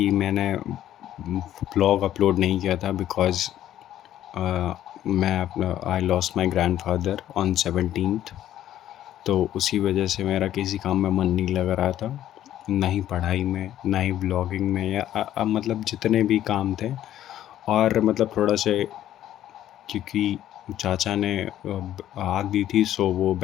मैंने ब्लॉग अपलोड नहीं किया था बिकॉज़ मैं अपना I lost my grandfather on 17th। तो उसी वजह से मेरा किसी काम में मन नहीं लग रहा था, ना ही पढ़ाई में, ना ही ब्लॉगिंग में, या मतलब जितने भी काम थे। और मतलब थोड़ा से, क्योंकि चाचा ने आग दी थी, सो वो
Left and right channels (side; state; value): right; quieter; 12.2 dB